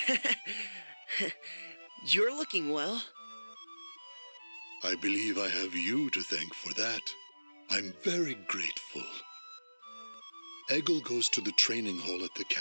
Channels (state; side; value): inverted; both; correlation -1.00